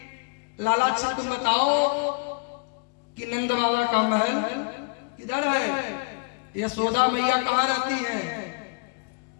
लाला अच्छा तुम बताओ कि नंद बाबा का महल किधर है, यशोदा मैया कहाँ रहती है?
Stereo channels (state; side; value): quieter; right; 32.4 dB